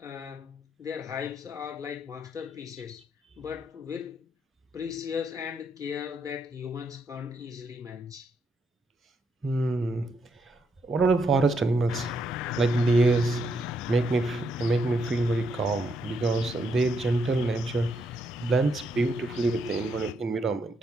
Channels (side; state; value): both; normal; correlation 0.77